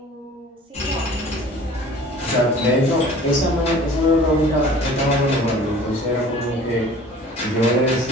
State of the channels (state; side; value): normal; both; correlation 0.46